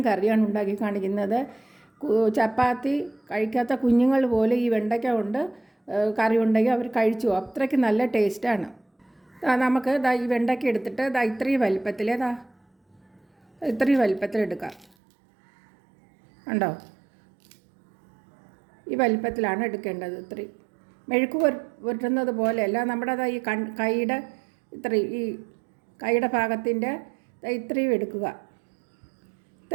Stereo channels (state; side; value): drops out; left; at 14.9 s